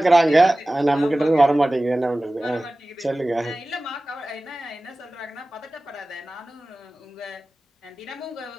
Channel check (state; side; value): normal; both; correlation 0.97